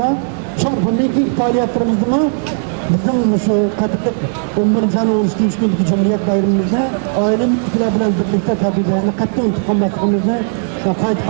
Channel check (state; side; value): silent; left; 64 dB below the other